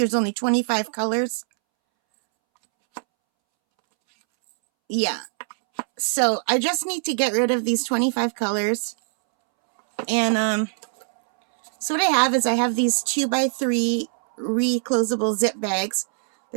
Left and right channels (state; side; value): silent; left; 64 dB below the other